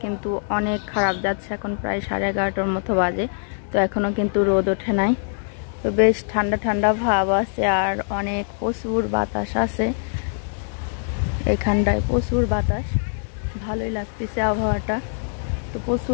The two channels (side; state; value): right; silent; digital silence